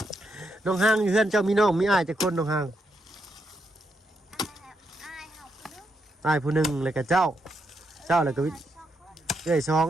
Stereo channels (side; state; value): both; normal; correlation 0.80